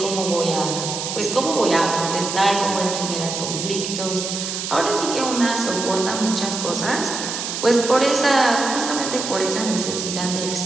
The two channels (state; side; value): noise; right; hiss, 4 dB below the sound